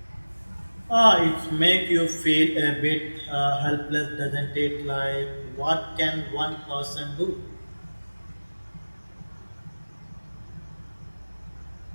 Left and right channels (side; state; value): both; inverted; correlation -1.00